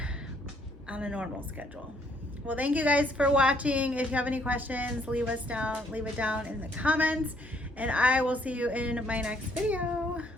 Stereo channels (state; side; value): normal; both; correlation 0.67